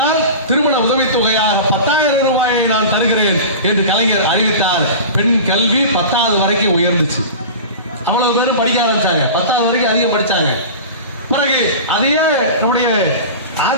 திருமண உதவித்தொகையாக 10,000 ரூபாயை நான் தருகிறேன் என்று கலைஞர் அறிவித்தார். பெண் கல்வி 10வது வரைக்கும் உயர்ந்துச்சு. அவ்வளவு பேரும் படிக்க ஆரம்பிச்சாங்க. 10வது வரைக்கும் அதிகம் படிச்சாங்க. பிறகு அதையே நம்முடைய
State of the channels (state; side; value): inverted; both; correlation -0.33